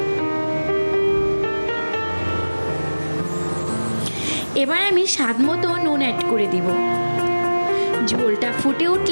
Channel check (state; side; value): inverted; both; correlation -1.00